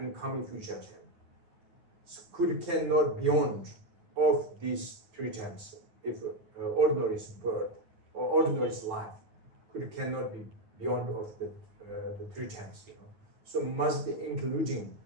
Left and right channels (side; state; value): left; late; 9.6 ms